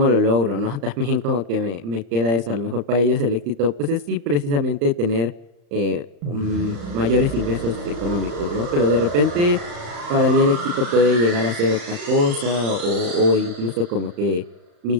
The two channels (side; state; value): left; late; 35 ms